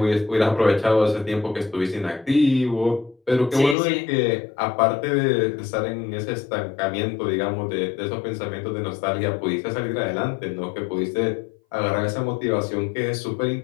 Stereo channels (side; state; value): right; drops out; at 3.8 s